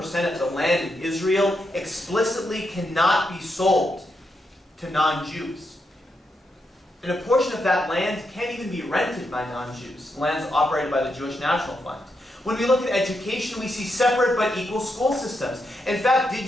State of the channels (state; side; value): normal; both; correlation 0.83